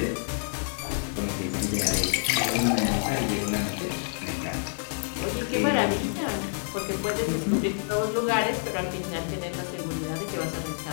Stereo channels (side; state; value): right; silent; 56 dB below the other